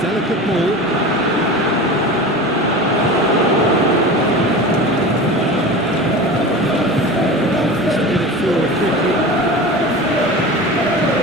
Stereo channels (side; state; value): both; normal; correlation 0.32